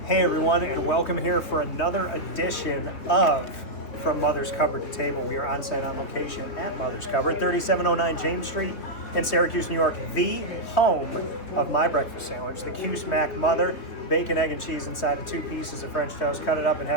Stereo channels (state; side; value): late; right; 3.2 ms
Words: Hey everyone, and welcome here for another edition of From Mother's Cupboard to Table. We are on site on location at Mother's Cupboard, 3709 James Street in Syracuse, New York, the home of my breakfast sandwich, the Cuse Mac Mother, bacon, egg, and cheese inside of 2 pieces of French toast. Cut it up and